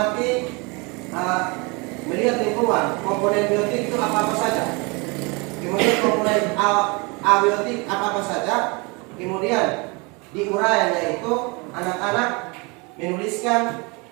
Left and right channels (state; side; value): quieter; left; 28.9 dB